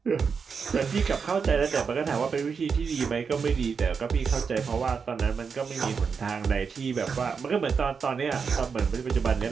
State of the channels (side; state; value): left; quieter; 5.8 dB